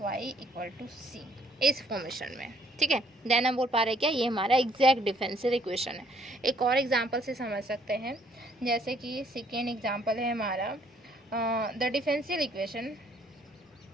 इक्वल टू सी, इस फॉर्मेशन में, ठीक है। देन हम बोल पा रहे हैं क्या, ये हमारा एग्जैक्ट डिफरेंशियल इक्वेशन है। एक और एग्जांपल से समझ सकते हैं, जैसे कि सेकेंड एग्जांपल है हमारा द डिफरेंशियल इक्वेशन।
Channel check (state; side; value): normal; both; correlation 0.65